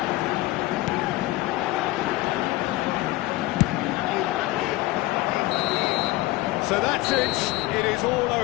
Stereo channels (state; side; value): quieter; right; 18.7 dB